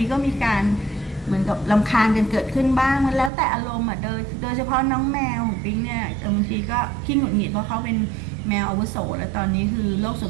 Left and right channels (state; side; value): drops out; left; at 3.3 s